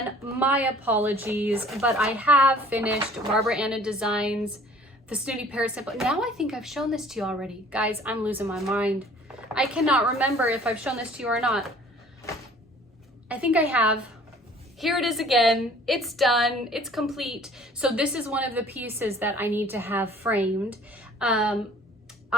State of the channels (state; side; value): normal; both; correlation 0.52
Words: my apologies, but I have finished Barbara Anna Designs, the Snooty Parrot Sample. Now I think I've shown this to you already. Guys, I'm losing my mind. I cannot remember if I've shown this to you or not. I think I have. Here it is again. It's done. It's complete. So this is one of the pieces that I need to have framed.